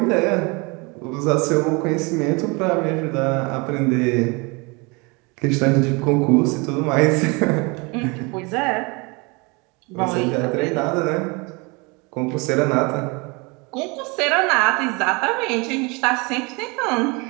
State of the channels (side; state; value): left; quieter; 28.4 dB